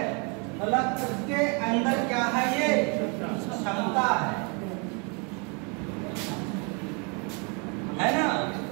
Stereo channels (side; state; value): left; quieter; 33.7 dB